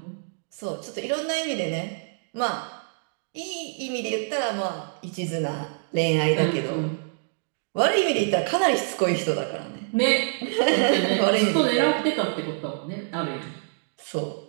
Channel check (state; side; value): silent; left; digital silence